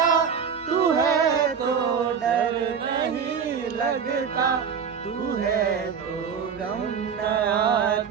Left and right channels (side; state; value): left; quieter; 6.9 dB